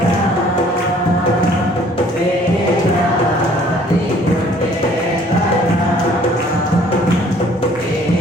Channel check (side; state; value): both; normal; correlation 0.57